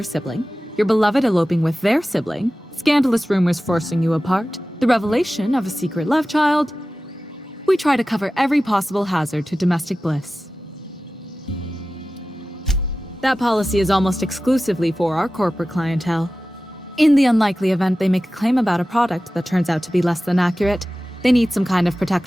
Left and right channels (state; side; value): normal; both; correlation 0.95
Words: sibling, your beloved eloping with their sibling, scandalous rumors forcing you apart, the revelation of a secret love child. We try to cover every possible hazard to domestic bliss. That policy is almost exclusively for our corporate clientele. In the unlikely event they make a claim about a product that turns out to be less than accurate, they need some kind of